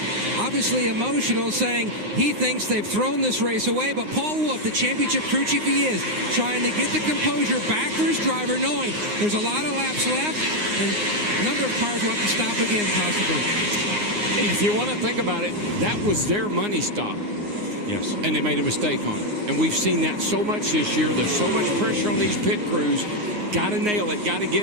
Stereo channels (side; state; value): left; late; 9.6 ms